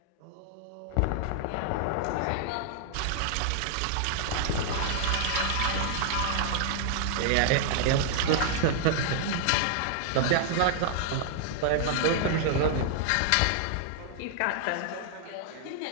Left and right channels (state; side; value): different; both; correlation -0.01